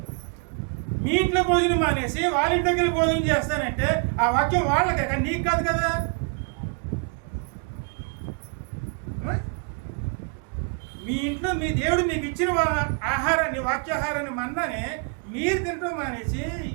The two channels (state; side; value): quieter; left; 37.6 dB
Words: మీ ఇంట్లో భోజనం మానేసి వాళ్ళ ఇంటి దగ్గర భోజనం చేస్తానంటే ఆ వాక్యం వాళ్ళకే, కానీ నీకు కాదు కదా. మీ ఇంట్లో మీ దేవుడు మీకు ఇచ్చిన ఆహారాన్ని, వాక్యాహారాన్ని, మన్నానే మీరు తింటాం మానేసి